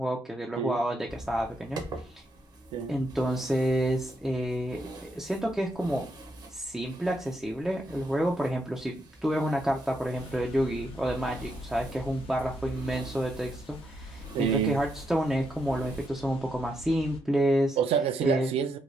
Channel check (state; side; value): normal; both; correlation 0.79